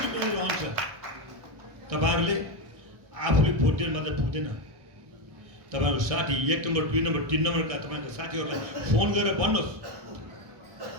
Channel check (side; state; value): left; late; 1.6 ms